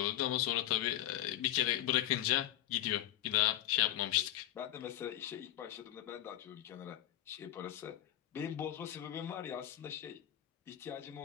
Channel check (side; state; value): right; quieter; 13.2 dB